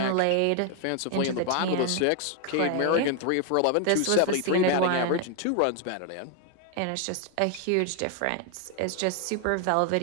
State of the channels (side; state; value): both; different; correlation 0.00